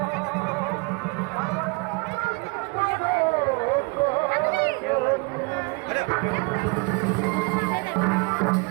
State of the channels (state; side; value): quieter; left; 29.7 dB